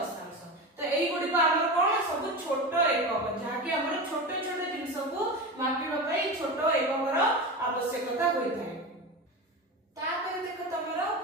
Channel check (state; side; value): normal; both; correlation 0.24